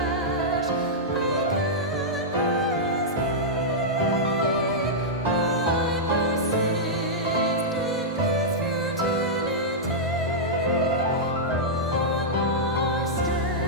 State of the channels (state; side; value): normal; both; correlation -0.09